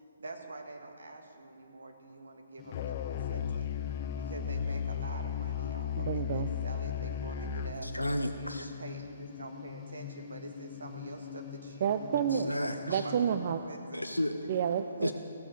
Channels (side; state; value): both; inverted; correlation -0.56